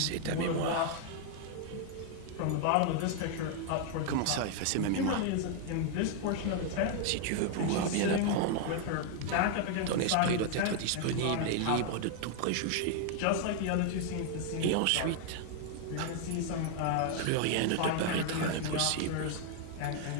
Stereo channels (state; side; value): different; both; correlation 0.00